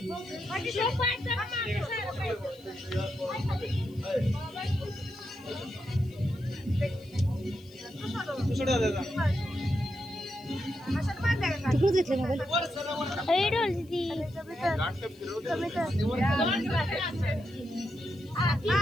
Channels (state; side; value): noise; left; hiss, 28 dB below the sound